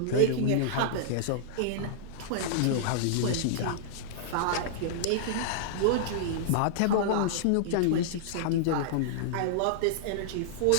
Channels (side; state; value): both; different; correlation -0.02